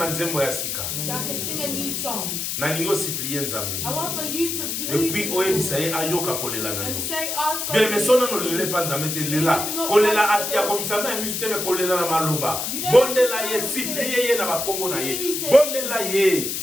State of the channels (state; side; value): noise; left; hiss, 3 dB below the sound